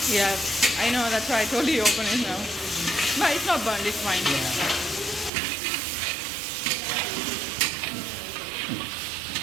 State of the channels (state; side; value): drops out; left; at 5.3 s